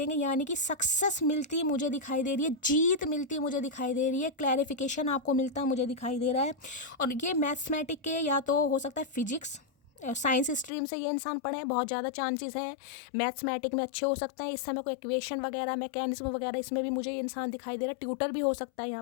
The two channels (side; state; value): right; drops out; at 10.7 s